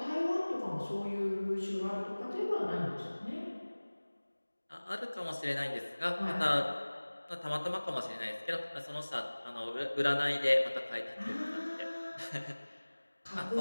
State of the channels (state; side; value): inverted; both; correlation -1.00